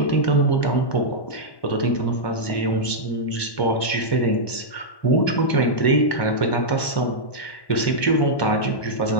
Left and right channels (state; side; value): late; right; 1.1 ms